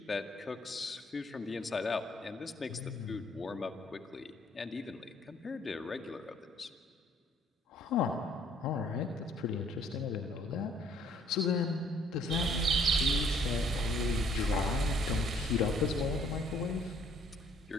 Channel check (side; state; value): both; normal; correlation 0.62